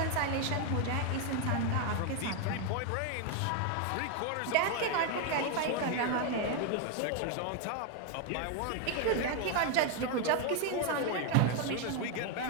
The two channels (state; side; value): different; both; correlation 0.01